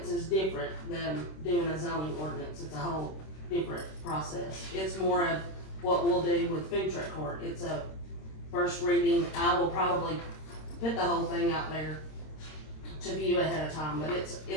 is different than doing a zoning ordinance. It's a whole different process. It's more of what we'll do with food truck court. It's a first reading. I will probably put the whole thing out there to view ahead of time, but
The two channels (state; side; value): late; right; 26 ms